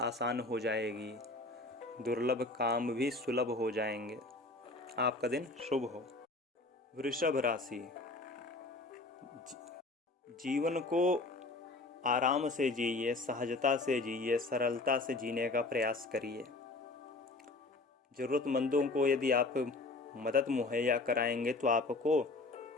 हो जाएगी, दुर्लभ काम भी सुलभ हो जाएंगे। आपका दिन शुभ हो। वृषभ राशि, जीवन को आराम से जिए, सहजता से जिए, सरलता से जीने का प्रयास करिए। ज़रूरतमंदों को यदि आप मदद मुहैया कराएंगे तो आपको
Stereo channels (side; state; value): right; quieter; 3.2 dB